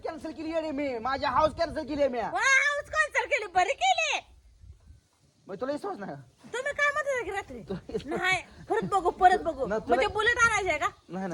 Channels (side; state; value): both; identical; correlation 1.00